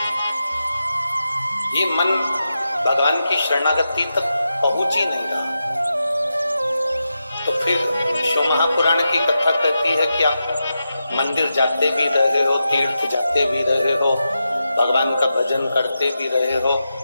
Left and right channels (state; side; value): inverted; both; correlation -0.89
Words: ये मन भगवान की शरणागति तक पहुंच ही नहीं रहा, तो फिर शिव महापुराण की कथा कहती है कि आप मंदिर जाते भी रहे हो, तीर्थ जाते भी रहे हो, भगवान का भजन करते भी रहे हो,